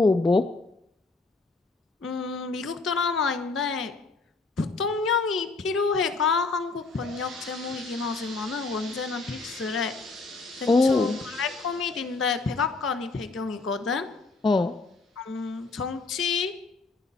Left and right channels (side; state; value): right; quieter; 3.8 dB